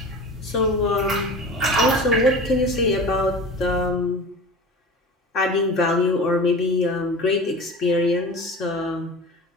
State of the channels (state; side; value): normal; both; correlation 0.35